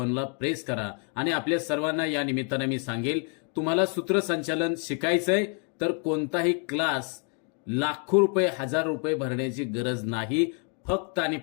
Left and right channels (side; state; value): right; quieter; 39.9 dB